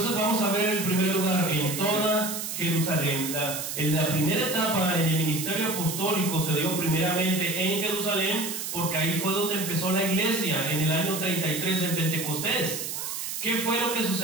vamos a ver en primer lugar en toda Jerusalén. En la primera etapa en el ministerio apostólico se dio primeramente en Jerusalén, porque ahí fue donde empezó la iglesia, en el año 33 en Pentecostés. ¿Qué fue lo que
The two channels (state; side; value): noise; right; hiss, 5 dB below the sound